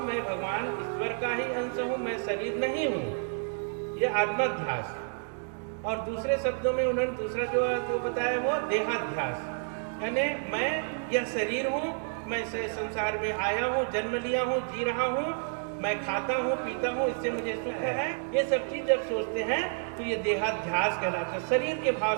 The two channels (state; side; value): silent; left; 58 dB below the other